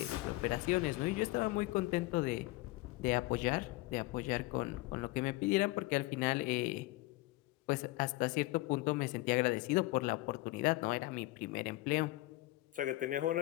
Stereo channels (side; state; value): right; quieter; 19.8 dB